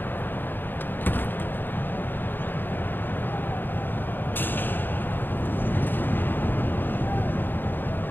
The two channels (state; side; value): late; right; 0.093 ms